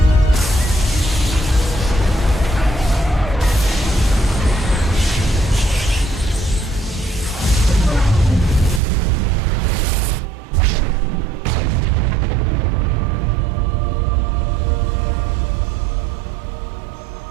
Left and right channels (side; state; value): left; drops out; at 8.8 s